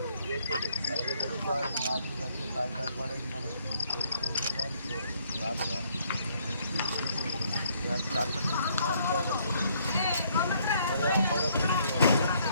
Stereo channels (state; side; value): inverted; both; correlation -0.68